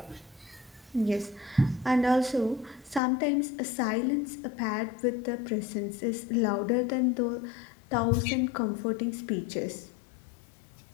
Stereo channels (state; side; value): drops out; right; at 3.0 s